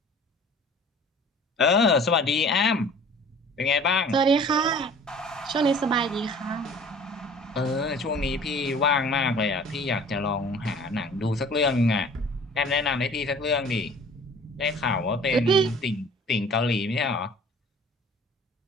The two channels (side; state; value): both; normal; correlation 0.48